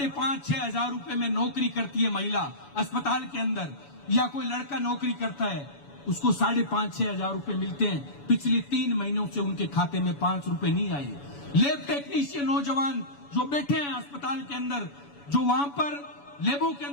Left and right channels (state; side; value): late; right; 7.0 ms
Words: हजार रुपए में नौकरी करती है महिला अस्पताल के अंदर, या कोई लड़का नौकरी करता है, उसको 5,500-6 हजार रुपए मिलते हैं। पिछले 3 महीनों से उनके खाते में 5 रुपए नहीं आए। लैब टेक्नीशियन नौजवान जो बैठे हैं अस्पताल के अंदर, जो वहां पर लैबों के